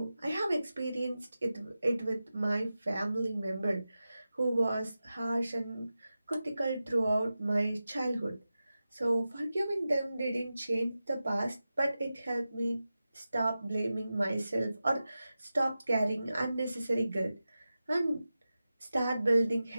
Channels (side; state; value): both; inverted; correlation -0.93